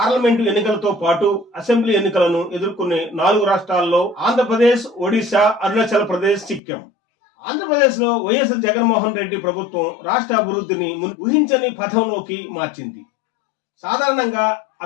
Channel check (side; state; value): right; drops out; at 6.6 s